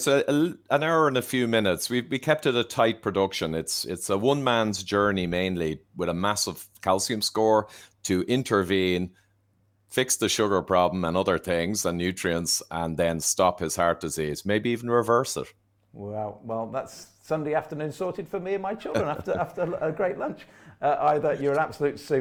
an hour and a few minutes. We kept it a tight production. It's a one man's journey mainly, with a massive calcium score to intervene, fix the sugar problem and other things and nutrients, and then stop his heart disease, maybe even reverse it. Well, that's Sunday afternoon sorted for me and my children after a great lunch. Ivor, you're an absolute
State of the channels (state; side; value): identical; both; correlation 1.00